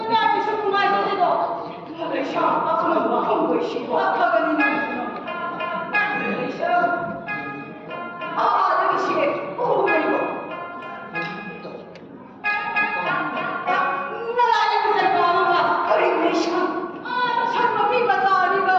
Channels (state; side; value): identical; both; correlation 1.00